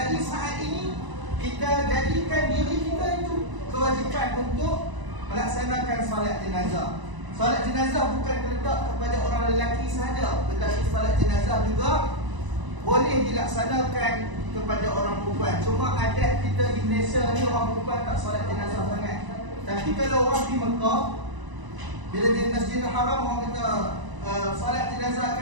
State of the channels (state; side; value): late; left; 1.0 ms